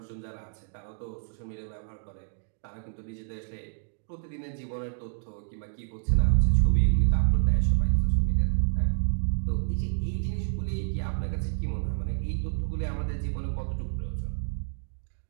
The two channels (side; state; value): left; silent; digital silence